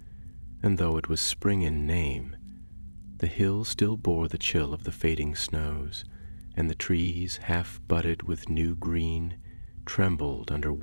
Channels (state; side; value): inverted; both; correlation -1.00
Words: and though it was spring in name, the hills still bore the chill of the fading snows, and the trees, half budded with new green, trembled under